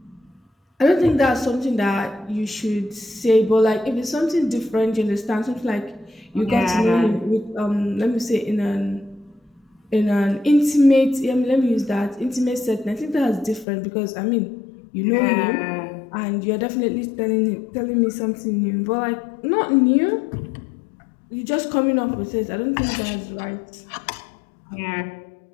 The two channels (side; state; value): right; drops out; at 13.7 s